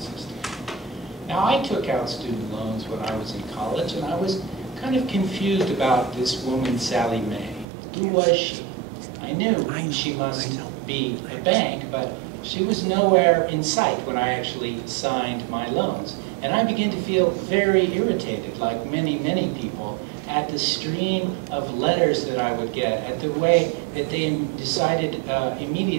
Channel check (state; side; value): drops out; left; at 7.7 s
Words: Now, I took out student loans when I was in college, and I was kind of confused about this woman, Sally Mae. Who was she? I knew she must be a bank, but she was nowhere in sight when I actually signed my loans. And I began to feel very irritated, like many, many people, at the stream of letters that I would get, at the way that they decided